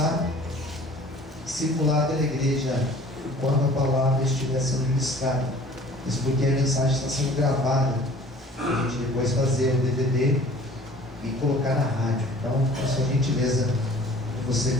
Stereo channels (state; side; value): normal; both; correlation 0.49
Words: e circular pela igreja enquanto a palavra estiver sendo ministrada. Isso porque a mensagem está sendo gravada, para a gente depois fazer o DVD e colocar na rádio. Então, peço a gentileza de você